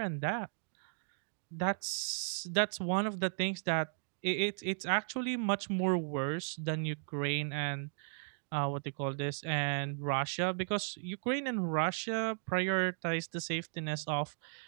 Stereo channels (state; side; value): silent; left; digital silence